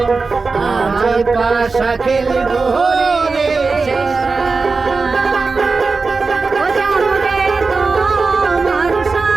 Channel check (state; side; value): quieter; left; 4.2 dB